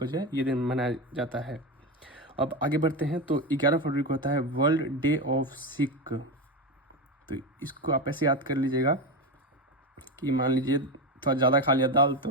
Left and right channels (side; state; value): both; normal; correlation 0.16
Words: जो है ये दिन मनाया जाता है। अब आगे बढ़ते हैं। तो 11 फरवरी को होता है वर्ल्ड डे ऑफ सिक। तो इसको आप ऐसे याद कर लीजिएगा कि मान लीजिए थोड़ा ज़्यादा खा लिया दाल, तो